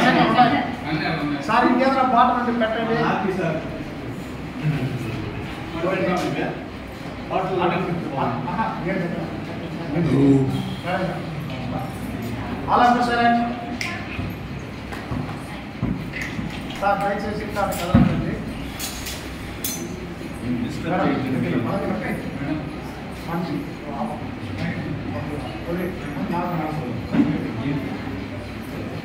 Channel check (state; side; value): identical; both; correlation 1.00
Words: సార్. ఇంకేదైనా బాటలు ఉంటే పెట్టండి. అలా సరే సార్, దయచేసి కదలండి.